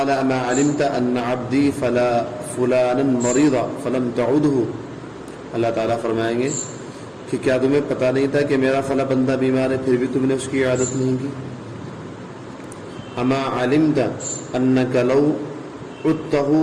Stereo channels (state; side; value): identical; both; correlation 1.00